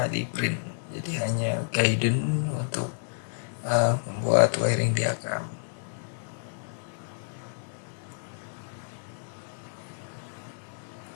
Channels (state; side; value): silent; right; 58 dB below the other